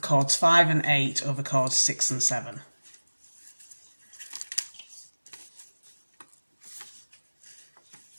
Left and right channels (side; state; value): both; inverted; correlation -1.00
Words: 5 and 8 over cords 6 and 7.